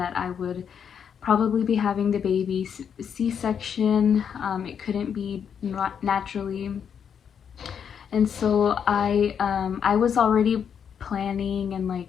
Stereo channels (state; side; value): quieter; right; 7.6 dB